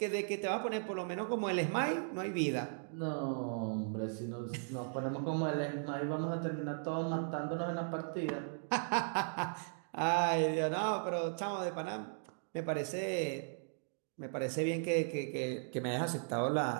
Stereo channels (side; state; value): left; silent; digital silence